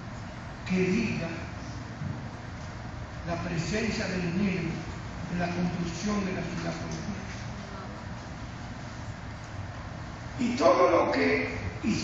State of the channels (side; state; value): both; identical; correlation 1.00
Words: que diga la presencia del dinero en la construcción de la ciudad colonial. Y todo lo que